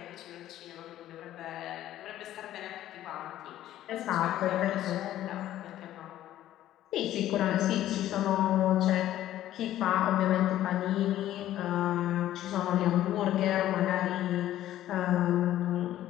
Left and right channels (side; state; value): right; quieter; 13.1 dB